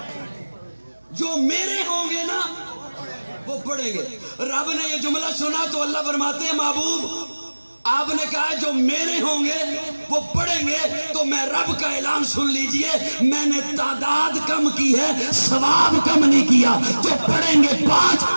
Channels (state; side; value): inverted; both; correlation -1.00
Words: جو میرے ہوں گے نا وہ پڑھیں گے. رب نے یہ جملہ سنا تو اللہ فرماتے ہیں محبوب آپ نے کہا جو میرے ہوں گے وہ پڑھیں گے, تو میں رب کا اعلان سن لیجئے, میں نے تعداد کم کی ہے, ثواب کم نہیں کیا. جو پڑھیں گے 5